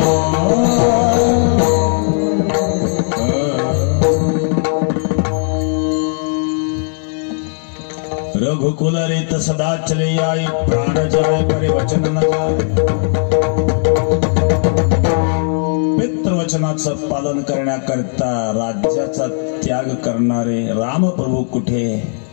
रघुकुल रीत सदा चले आई, प्राण जाए परे वचन न जाए. पितृवचनाचं पालन करण्याकरता राज्याचा त्याग करणारे रामप्रभू कुठे,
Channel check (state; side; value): silent; right; digital silence